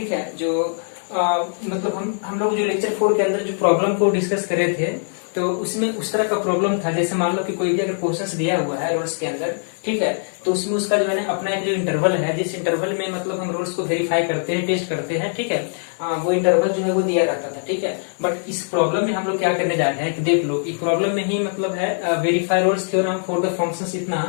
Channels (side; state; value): right; silent; 57 dB below the other